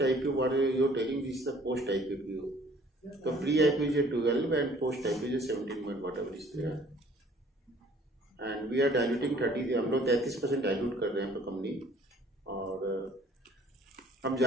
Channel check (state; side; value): normal; both; correlation 0.56